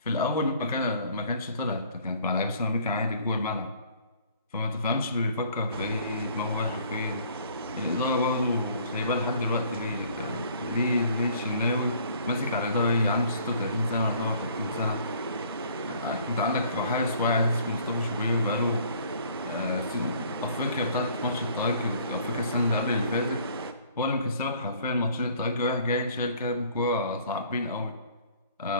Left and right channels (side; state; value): both; inverted; correlation -0.57